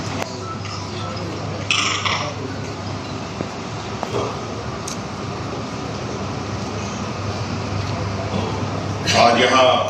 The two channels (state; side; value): identical; both; correlation 1.00